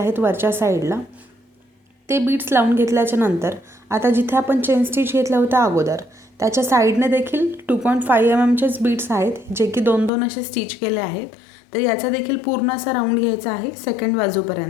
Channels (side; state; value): right; drops out; at 10.1 s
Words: वरच्या साईडला. ते बीड्स लावून घेतल्याच्या नंतर आता जिथे आपण चेन स्टिच घेतलं होतं अगोदर त्याच्या साईडने देखील 2.5 mm बीड्स आहेत, जे की 2-2 असे स्टिच केले आहेत. तर याचा देखील पूर्ण असा राऊंड घ्यायचा आहे सेकंड